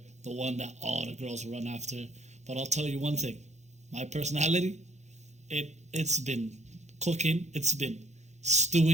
the one that all the girls run after. But I'll tell you one thing. My personality, it's been cooking. It's been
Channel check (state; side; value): late; left; 0.33 ms